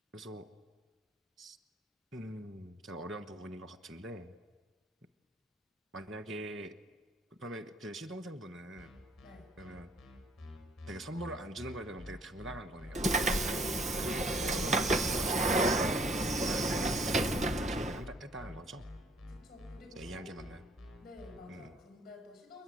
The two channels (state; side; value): normal; both; correlation 0.60